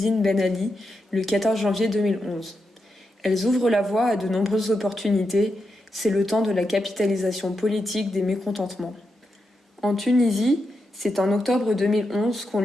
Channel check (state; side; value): normal; both; correlation 0.86